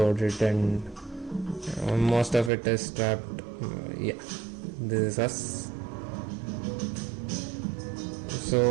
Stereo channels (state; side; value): drops out; left; at 2.5 s